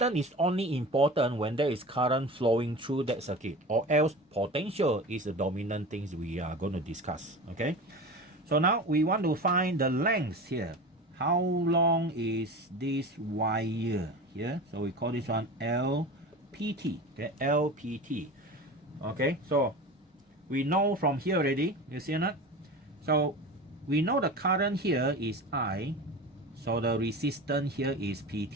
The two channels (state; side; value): normal; both; correlation 0.32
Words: is only important when there is current flowing through that circuit, or else potential is the dominant things we are going to discuss. Okay, so now we want to find the length here. How long is this wire here? So we call this one LPT. Okay, LPT. Okay, so we know from here already, you see or not? So we know the current here is I, so the resistance here is